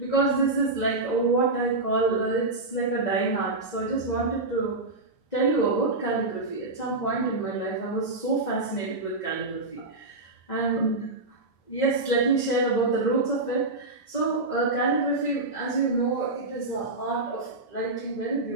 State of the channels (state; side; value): quieter; left; 3.1 dB